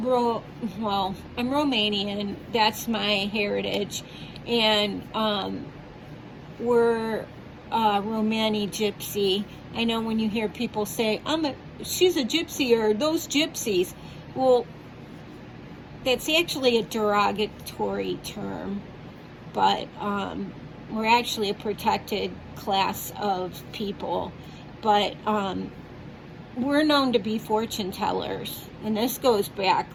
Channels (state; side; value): identical; both; correlation 1.00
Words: Romanian. That's my heritage, and we're Romani gypsy. I know when you hear people say, she's a gypsy, or those gypsies. Well, that's actually a derogatory term, but we're actually a protected class of people. But we're known to be fortune tellers, and this goes back